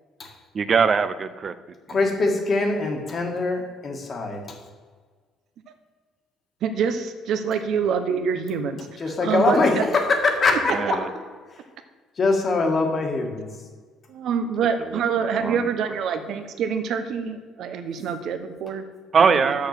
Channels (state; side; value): normal; both; correlation 0.71